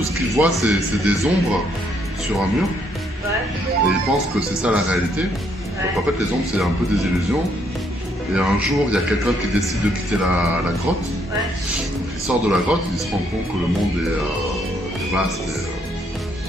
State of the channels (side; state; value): both; normal; correlation 0.71